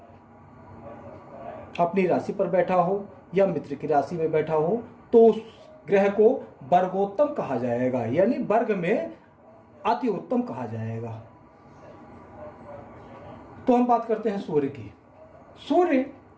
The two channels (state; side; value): identical; both; correlation 1.00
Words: अपनी राशि पर बैठा हो या मित्र की राशि में बैठा हो, तो उस ग्रह को वर्गोत्तम कहा जाएगा, यानी वर्ग में अति उत्तम कहा जाएगा। तो हम बात करते हैं सूर्य की। सूर्य